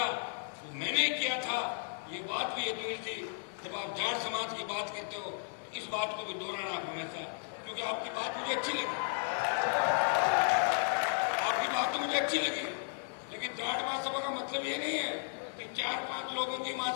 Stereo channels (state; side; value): silent; right; digital silence